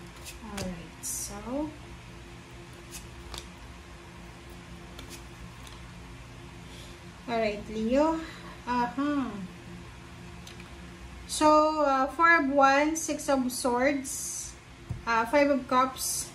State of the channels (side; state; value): both; identical; correlation 1.00